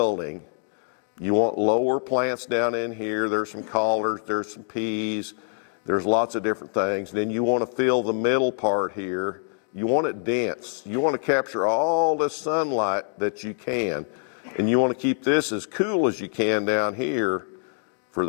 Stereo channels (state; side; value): silent; right; 61 dB below the other